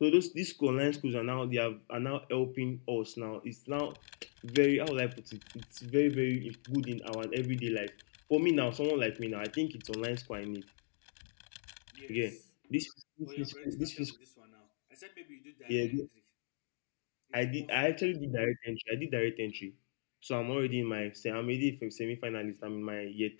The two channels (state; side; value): silent; right; digital silence